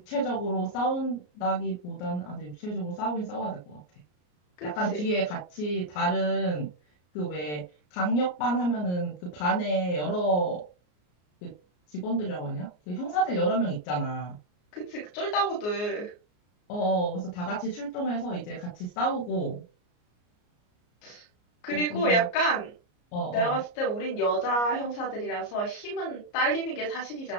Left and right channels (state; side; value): late; right; 33 ms